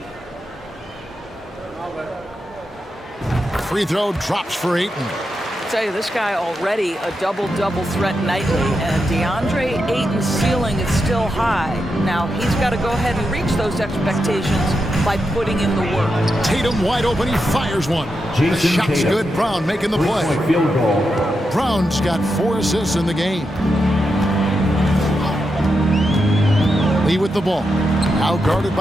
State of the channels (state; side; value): normal; both; correlation 0.86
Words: Free throw drops for Ayton. I tell you, this guy already a double-double threat nightly, and DeAndre Ayton's ceiling is still high. Now, he's got to go ahead and reach those expectations by putting in the work. Tatum wide open, he fires one. The shot's good, Brown making the play. Field goal. Brown's got 4 assists in the game. Lee with the ball. Now guarded